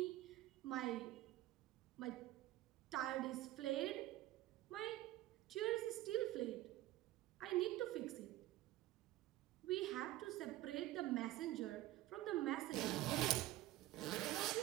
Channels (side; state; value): left; quieter; 15.6 dB